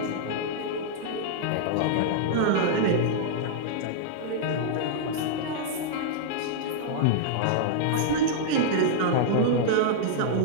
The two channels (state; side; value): different; both; correlation -0.02